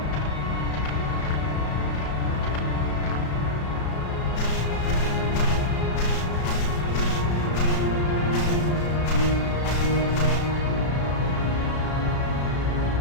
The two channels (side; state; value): right; late; 34 ms